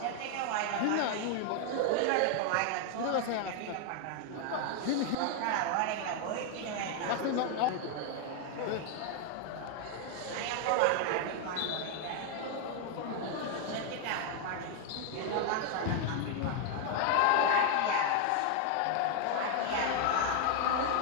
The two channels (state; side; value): different; both; correlation 0.00